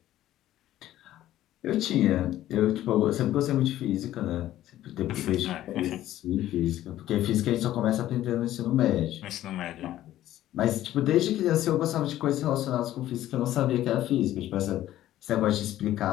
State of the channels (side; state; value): right; quieter; 13.6 dB